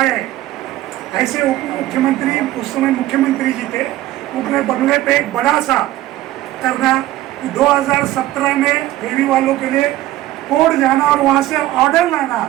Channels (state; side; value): quieter; left; 15.3 dB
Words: ऐसे उप मुख्यमंत्री उस समय मुख्यमंत्री जी थे, अपने बंगले पे एक बड़ा सा करना 2017 में फेरी वालों के लिए कोर्ट जाना और वहाँ से ऑर्डर लाना